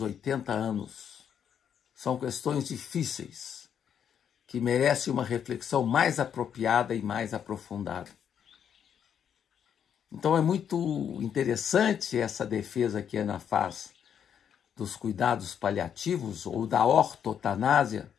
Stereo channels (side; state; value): right; quieter; 8.5 dB